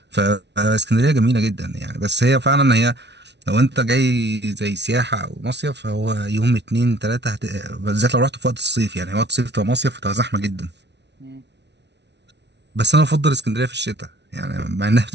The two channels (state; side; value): late; left; 0.50 ms